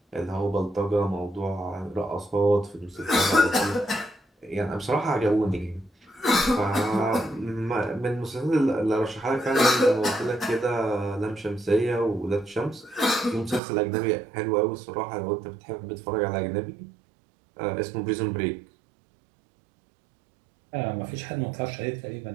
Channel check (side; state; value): left; drops out; at 13.6 s